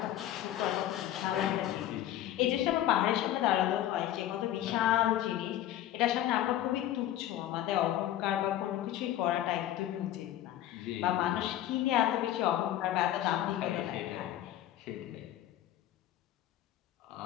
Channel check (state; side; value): quieter; right; 12.7 dB